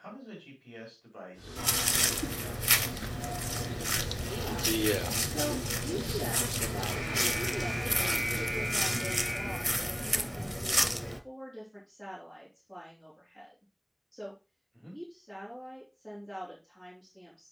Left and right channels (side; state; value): both; identical; correlation 1.00